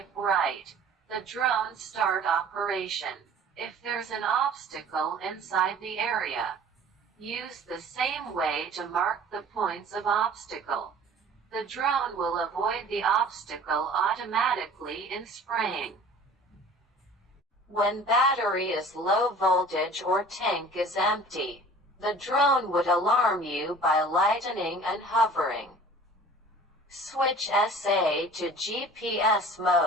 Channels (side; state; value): both; normal; correlation 0.46